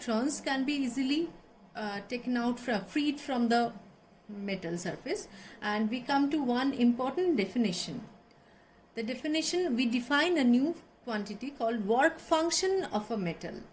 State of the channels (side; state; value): both; identical; correlation 1.00